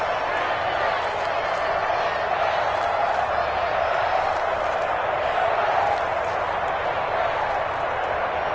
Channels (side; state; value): both; identical; correlation 1.00